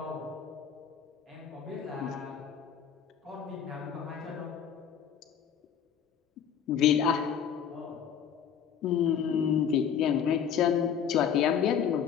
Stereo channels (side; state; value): right; quieter; 8.1 dB